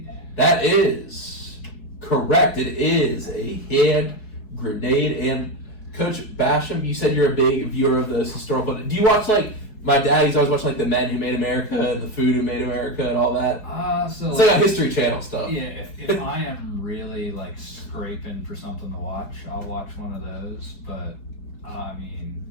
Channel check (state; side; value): late; right; 4.7 ms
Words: That is correct. It is a hand grenade. And Coach Bashioum, you said you're a big viewer of those historical. Do you watch like my dad? He's always watching like The Men Who Made America and The Food Who Made America and all that. So it's like a History Channel stuff. Yeah, if I am really like scraping for something to watch, I'll watch one of those. But I